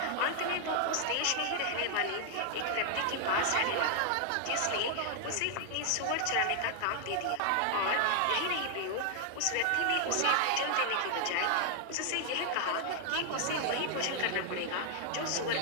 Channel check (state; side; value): different; both; correlation 0.00